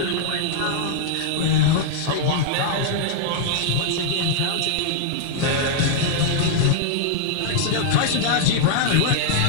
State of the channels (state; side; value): different; both; correlation -0.01